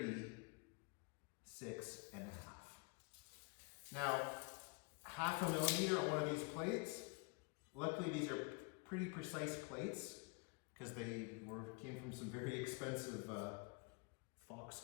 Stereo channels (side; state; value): right; quieter; 32.3 dB